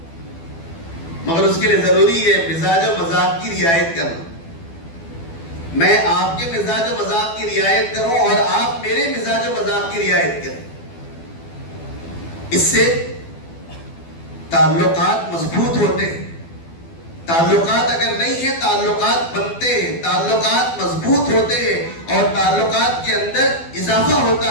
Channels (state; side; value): late; right; 12 ms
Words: مگر اس کے لیے ضروری ہے مزاج و مذاق کی رعایت کرنا۔ میں آپ کے مزاج و مذاق کی رعایت کروں اور آپ میرے مزاج و مذاق کی رعایت کریں، اس سے تعلقات مضبوط ہوتے ہیں۔ تعلقات اگر نہیں ہیں تعلقات بنتے ہیں، تعلقات مضبوط ہوتے ہیں اور تعلقات کے اندر اضافہ ہوتا